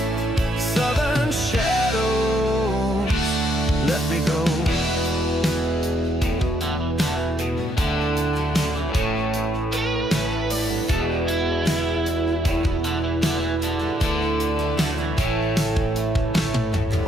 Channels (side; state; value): both; normal; correlation 0.73